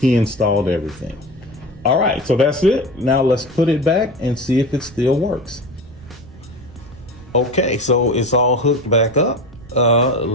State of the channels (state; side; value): noise; right; rumble, 21 dB below the sound